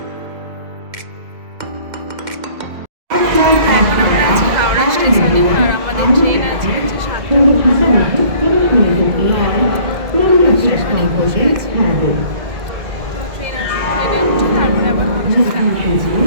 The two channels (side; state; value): left; late; 2.0 ms